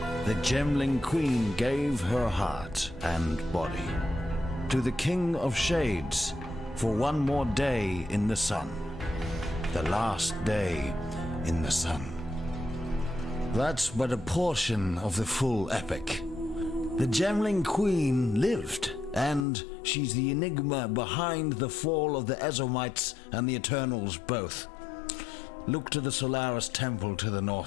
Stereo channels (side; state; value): right; drops out; at 19.5 s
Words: the Gemling Queen gave her heart and body to the King of Shades for one more day in the sun. The last day in the sun. That's but a portion of the full epic. The Gemling Queen lived, and she's the enigma behind the fall of the Ezomites and the Eternals both. Look to the Solaris Temple to the